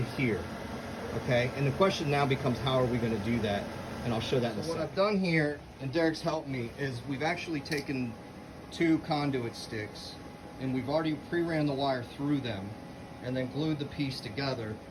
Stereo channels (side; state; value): both; identical; correlation 1.00